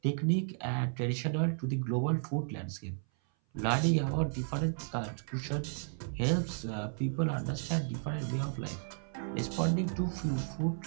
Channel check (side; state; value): left; silent; 55 dB below the other